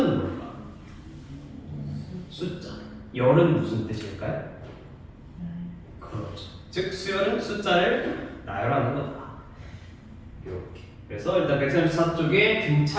뭘까? 숫자. 열은 무슨 뜻일까요? 그렇죠. 즉 수열은 숫자를 나열하는 거다. 이렇게. 그래서 일단 134쪽에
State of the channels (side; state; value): both; identical; correlation 1.00